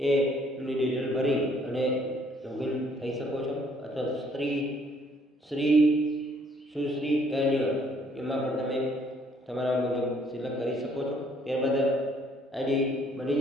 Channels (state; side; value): normal; both; correlation 0.64